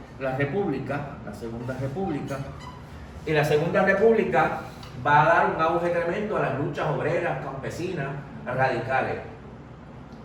la república, la segunda república, y la segunda república va a dar un auge tremendo a las luchas obreras, campesinas, radicales.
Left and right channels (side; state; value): both; identical; correlation 1.00